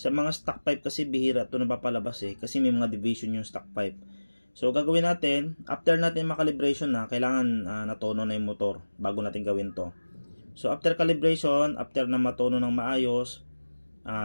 mga stock pipe kasi bihira ito napapalabas kasi may mga division yung stock pipe. So, gagawin natin, after natin makalibration na, kailangan natono na yung motor bago natin gawin to. So, after calibration, after na matono ng maayos,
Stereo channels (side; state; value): both; inverted; correlation -1.00